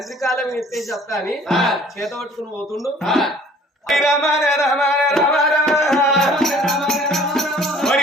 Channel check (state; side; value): normal; both; correlation 0.53